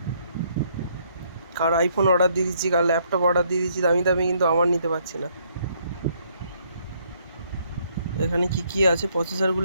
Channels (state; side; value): inverted; both; correlation -0.69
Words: কার আইফোন অর্ডার দিয়ে দিচ্ছি, কার ল্যাপটপ অর্ডার দিয়ে দিচ্ছি দামি দামি, কিন্তু আমার নিতে পারছি না। এখানে কি কি আছে